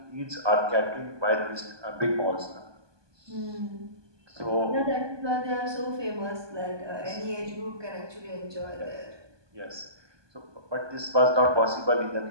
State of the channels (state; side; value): late; left; 1.2 ms